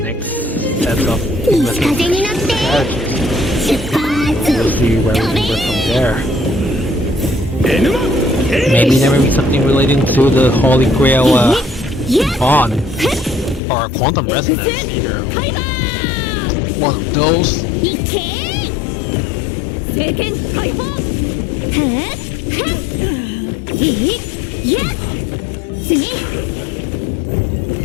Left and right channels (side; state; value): right; drops out; at 13.6 s